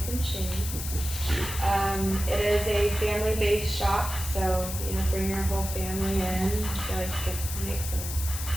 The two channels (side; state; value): left; noise; hiss, 7 dB below the sound